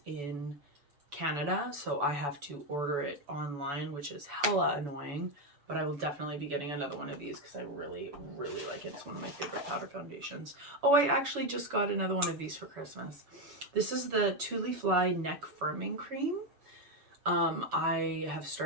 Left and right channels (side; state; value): left; late; 7.0 ms